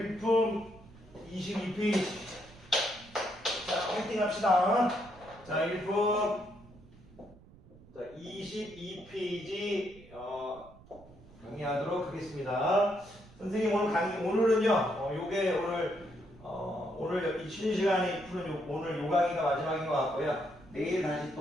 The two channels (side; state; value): right; noise; rumble, 23 dB below the sound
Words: 22페이지. 자, 화이팅 합시다. 자, 일품 22페이지 강의하도록 하겠습니다. 선생님 오늘은요, 요게 오늘 이 쉬는 시간에 푸는 오늘 요 강의가 마지막인 것 같고요. 내일 다시